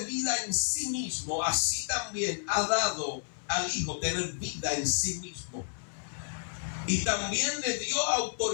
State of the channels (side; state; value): right; silent; 57 dB below the other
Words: vida en sí mismo, así también ha dado al Hijo tener vida en sí mismo. Y también le dio